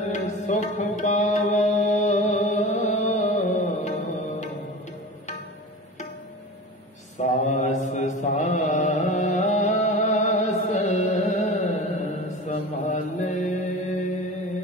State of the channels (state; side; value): normal; both; correlation 0.34